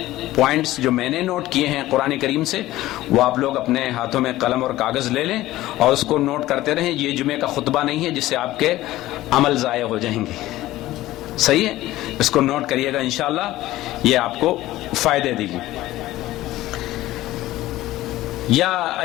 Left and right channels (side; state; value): right; quieter; 16.0 dB